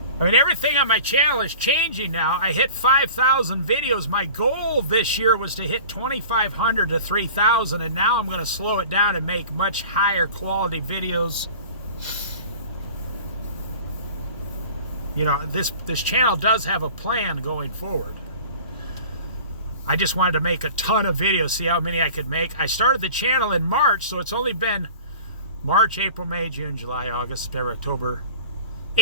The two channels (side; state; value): both; inverted; correlation -0.41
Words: everything on my channel is changing now. I hit 5,000 videos. My goal this year was to hit 2,500 to 3,000, and now I'm going to slow it down and make much higher quality videos. You know, this channel does have a plan going forward. I just wanted to make a ton of videos, see how many I could make. I started the channel in March, so it's only been March, April, May, June, July, August, September, October.